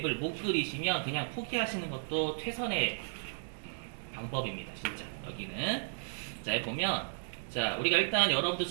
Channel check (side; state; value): left; silent; digital silence